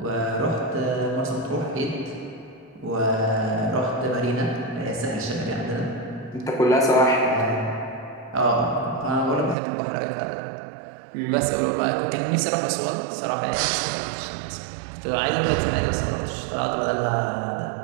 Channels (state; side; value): drops out; left; at 9.6 s